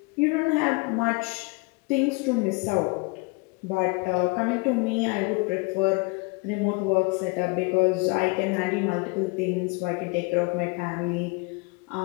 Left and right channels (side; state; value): right; quieter; 28.9 dB